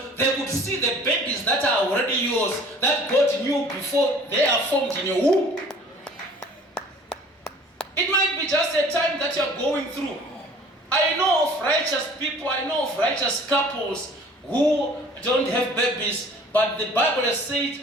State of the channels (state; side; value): normal; both; correlation 0.50